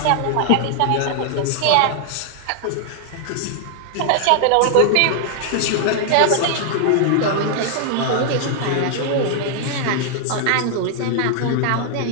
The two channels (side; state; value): both; different; correlation 0.00